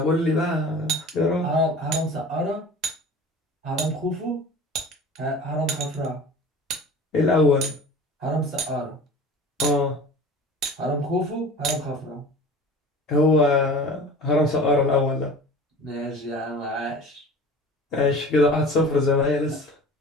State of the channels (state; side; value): normal; both; correlation 0.40